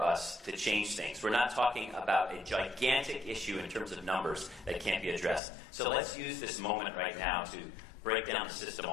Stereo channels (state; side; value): drops out; right; at 5.4 s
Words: us to change things. We're not talking about a gigantic issue in terms of numbers that can't be addressed. So let's use this moment right now to break down the system